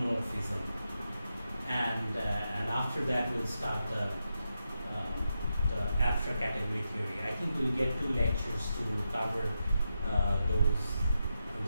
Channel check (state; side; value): inverted; both; correlation -0.87